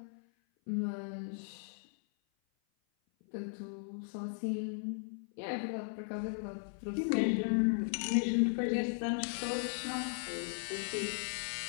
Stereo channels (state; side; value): silent; right; 53 dB below the other